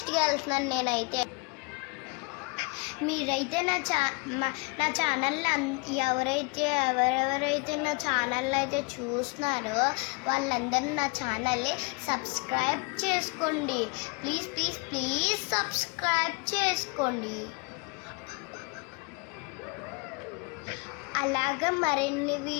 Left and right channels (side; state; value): right; quieter; 30.8 dB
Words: వెళ్తున్నాను నేనైతే. మీరైతే నా ఛానల్ని ఎవరెవరైతే నా ఛానల్ని అయితే చూస్తున్నారో వాళ్ళందరూ నా ఛానల్ని సబ్స్క్రైబ్ చేసుకోండి. ప్లీజ్ సబ్స్క్రైబ్ చేసుకోండి. అలాగా మరిన్ని